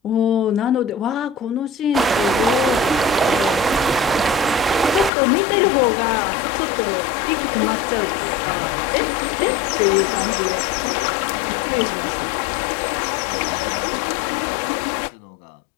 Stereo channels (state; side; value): drops out; right; at 5.1 s